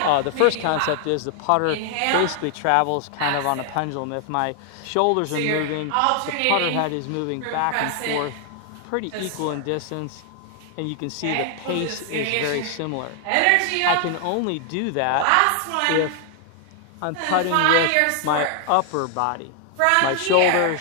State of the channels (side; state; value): both; different; correlation 0.00